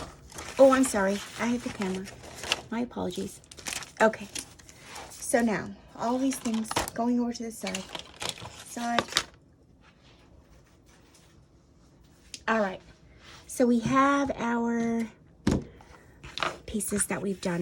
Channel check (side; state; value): both; identical; correlation 1.00